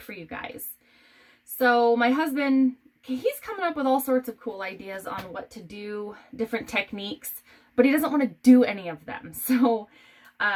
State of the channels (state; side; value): identical; both; correlation 1.00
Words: for you guys. So my husband, he's coming up with all sorts of cool ideas on what to do, different techniques, but he doesn't want to do any of them. So